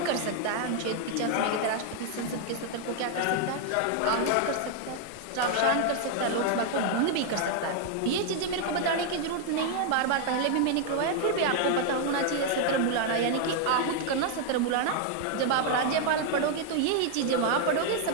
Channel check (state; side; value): different; both; correlation 0.00